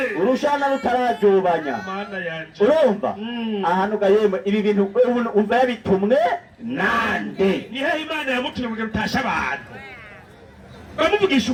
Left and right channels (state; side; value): identical; both; correlation 1.00